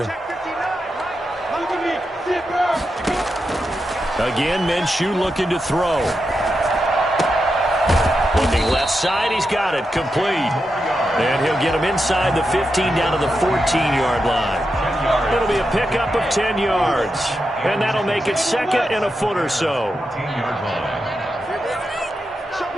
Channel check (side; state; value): both; normal; correlation 0.87